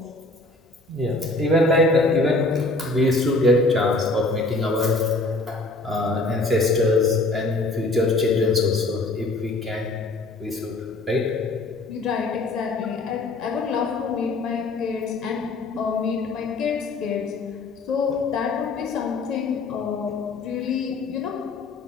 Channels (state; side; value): quieter; right; 3.1 dB